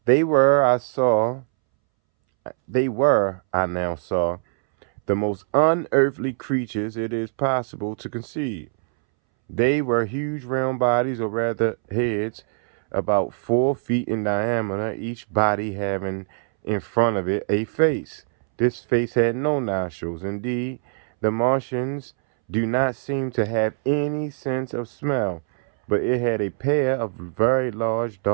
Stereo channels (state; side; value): silent; left; 63 dB below the other